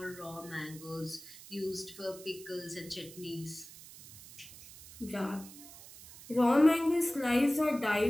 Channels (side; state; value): right; noise; hiss, 17 dB below the sound